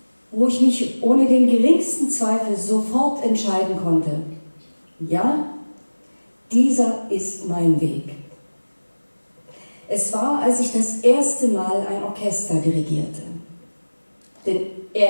wo ich mich ohne den geringsten Zweifel sofort entscheiden konnte. Ja, dieser ist mein Weg. Es war, als ich das erste Mal ein Orchester dirigierte. Denn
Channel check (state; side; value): inverted; both; correlation -1.00